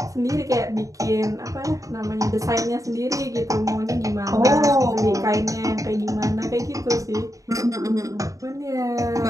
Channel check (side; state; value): left; late; 0.16 ms